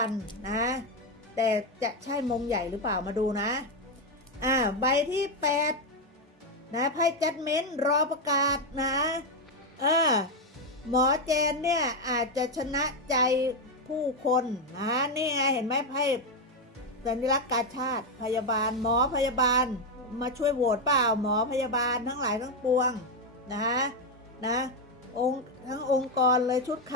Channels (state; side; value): normal; both; correlation 0.06